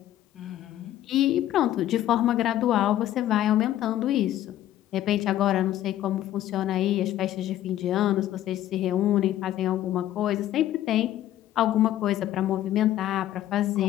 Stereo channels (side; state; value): right; quieter; 12.9 dB